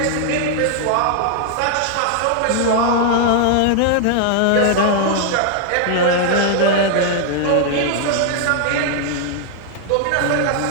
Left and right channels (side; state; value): both; different; correlation -0.01